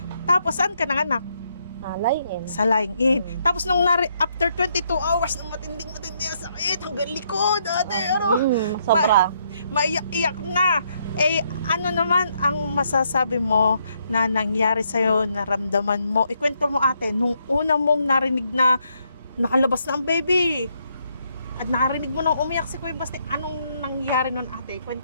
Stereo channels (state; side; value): inverted; both; correlation -0.75